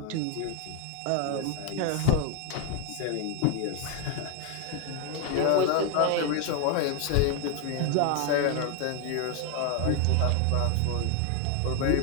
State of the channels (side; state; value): both; different; correlation 0.00